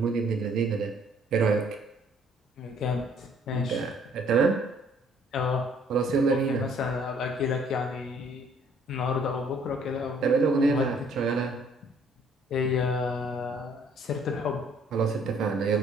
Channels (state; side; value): normal; both; correlation 0.61